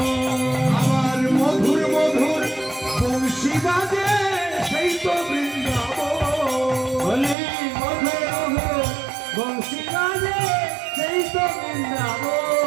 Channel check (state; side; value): drops out; left; at 7.4 s